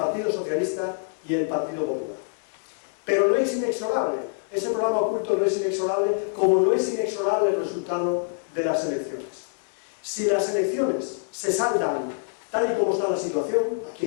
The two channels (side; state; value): right; silent; digital silence